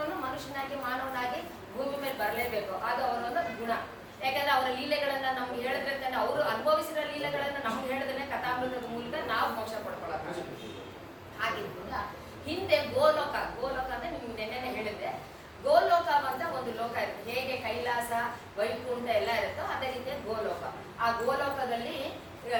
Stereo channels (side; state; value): both; identical; correlation 1.00